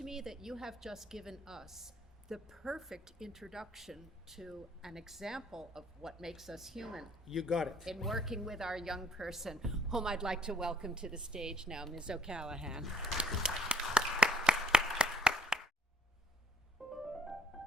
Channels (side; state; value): both; normal; correlation 0.60